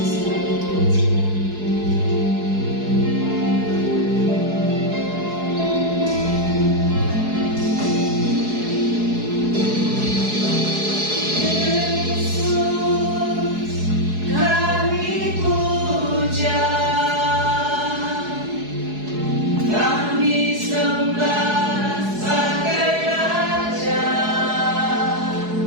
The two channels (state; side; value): late; left; 4.8 ms